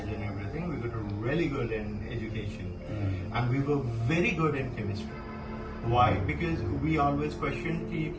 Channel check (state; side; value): identical; both; correlation 1.00